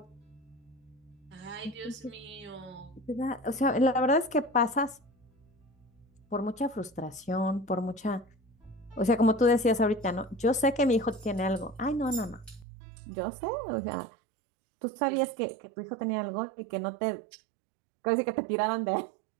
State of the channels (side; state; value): left; drops out; at 12.7 s